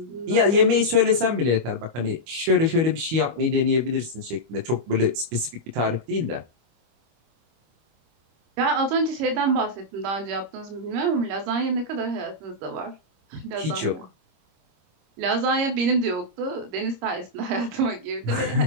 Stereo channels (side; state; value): left; late; 25 ms